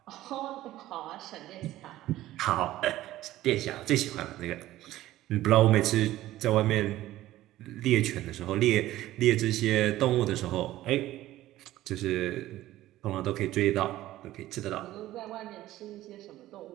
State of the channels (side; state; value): left; quieter; 15.1 dB